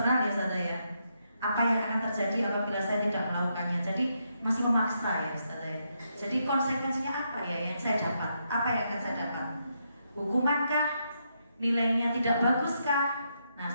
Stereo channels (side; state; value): both; inverted; correlation -0.80